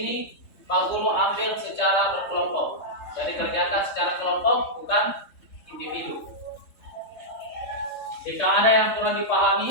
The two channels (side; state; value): right; late; 3.6 ms